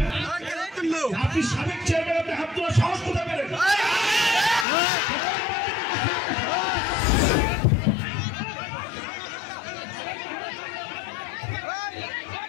আপনি সাবেক চেয়ারম্যান, আপনি হাত তোলার সাহস কোথায় পেলেন?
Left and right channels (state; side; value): drops out; right; at 4.7 s